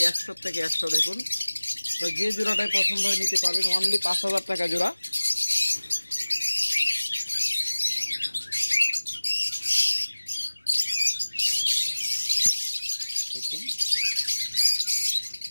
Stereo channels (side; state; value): both; inverted; correlation -1.00